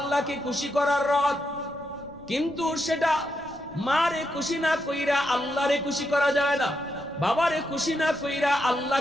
খুশি করার রাত। কিন্তু সেটা মারে খুশি না কইরা আল্লাহরে খুশি করা যায় না, বাবারে খুশি না কইরা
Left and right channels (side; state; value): left; noise; rumble, 25 dB below the sound